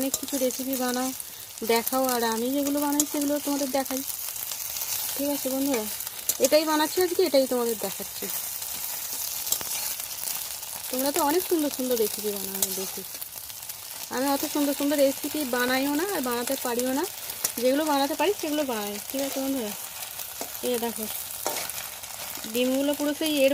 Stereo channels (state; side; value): identical; both; correlation 1.00